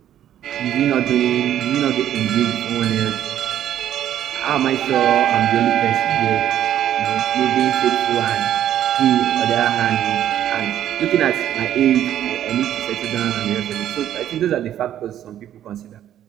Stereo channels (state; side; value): quieter; left; 11.2 dB